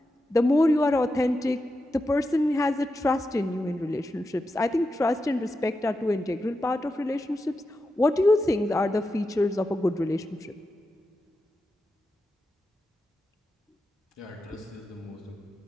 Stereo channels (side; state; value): both; normal; correlation 0.89